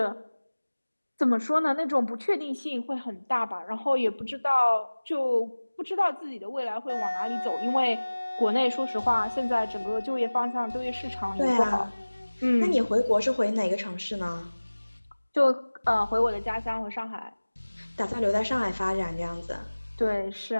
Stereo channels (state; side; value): inverted; both; correlation -1.00